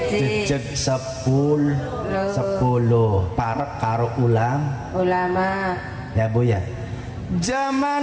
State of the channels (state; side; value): identical; both; correlation 1.00